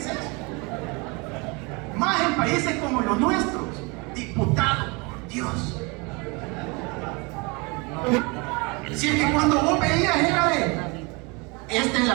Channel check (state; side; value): quieter; left; 28.5 dB